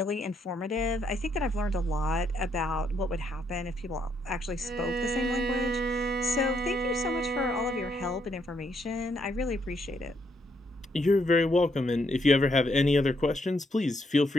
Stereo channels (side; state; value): both; normal; correlation 0.74